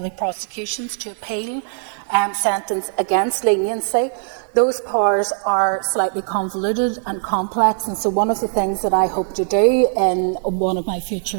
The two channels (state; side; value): silent; left; digital silence